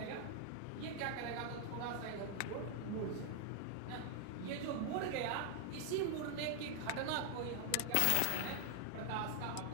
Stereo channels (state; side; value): different; both; correlation 0.00